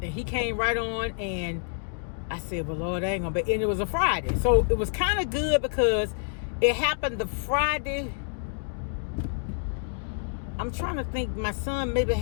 and he came right on, and I said, well, Lord, I ain't gonna be. And it was a Friday, so it was kind of good because It happened the Friday. I'm trying to think. My son maybe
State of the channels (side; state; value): right; silent; digital silence